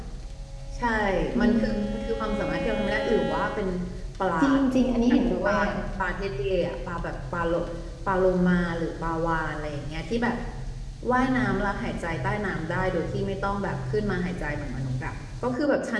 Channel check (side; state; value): both; identical; correlation 1.00